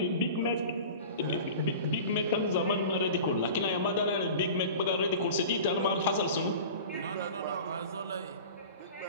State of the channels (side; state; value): both; inverted; correlation -0.37